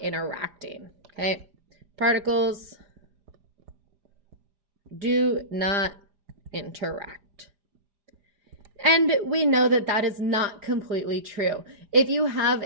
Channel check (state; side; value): late; left; 4.9 ms